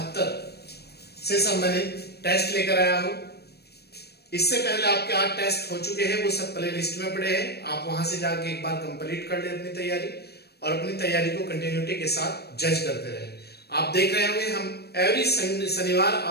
से संबंधित टेस्ट लेकर आया हूं। इससे पहले आपके 8 टेस्ट हो चुके हैं, वो सब प्ले लिस्ट में पड़े हैं। आप वहां से जाके एक बार कंप्लीट कर ले अपनी तैयारी और अपनी तैयारी को कंटिन्यूटी के साथ जज करते रहे। आप देख रहे होंगे हम एवरी शनिवार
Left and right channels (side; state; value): right; late; 0.47 ms